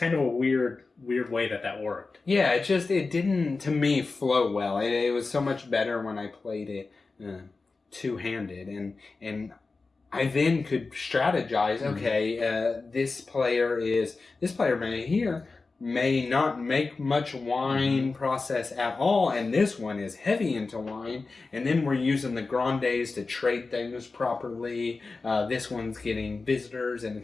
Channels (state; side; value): quieter; right; 3.9 dB